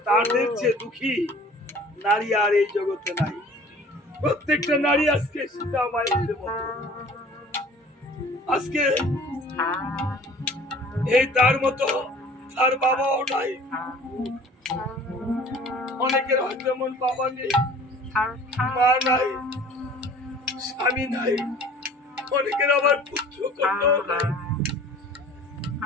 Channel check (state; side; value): normal; both; correlation 0.47